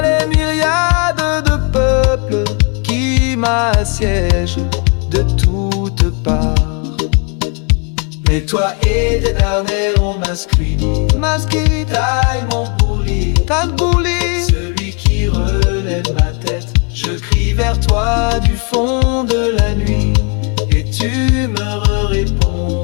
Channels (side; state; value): right; quieter; 34.5 dB